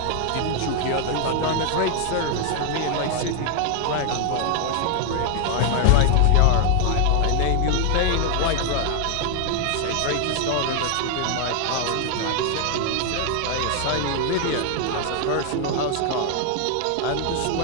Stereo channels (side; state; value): both; different; correlation 0.00